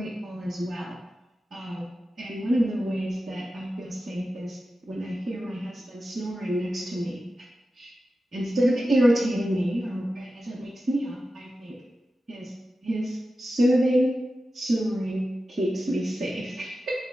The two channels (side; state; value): both; normal; correlation 0.92